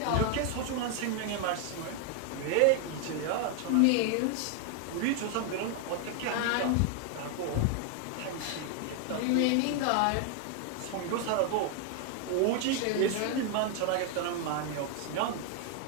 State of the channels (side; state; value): both; different; correlation 0.00